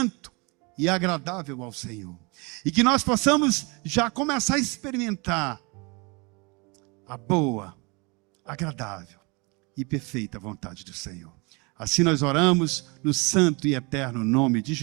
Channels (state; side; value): quieter; left; 28.9 dB